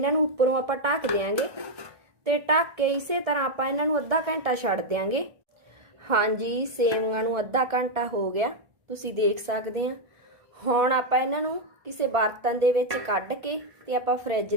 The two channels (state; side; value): late; left; 1.6 ms